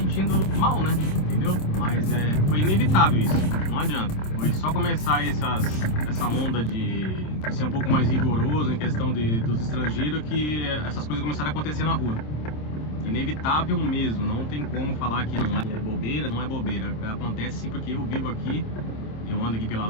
mal, né? Entendeu? Mas foi inevitável isso, não adianta. Foi só começar essa onda de ser um pouco mais rigoroso em questão dos estrangeiros que essas coisas começaram a acontecer na rua. Inevitável mesmo, não tem como falar que não é bobeira, não é bobeira. Acontece sim, porque eu vivo aqui, eu ando aqui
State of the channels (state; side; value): late; right; 26 ms